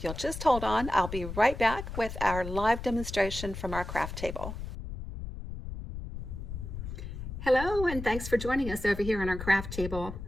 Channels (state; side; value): noise; left; rumble, 8 dB below the sound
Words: you'll just hold on, I'll be right back with our live demonstration from our craft table. Hello, and thanks for joining us over here on our craft table.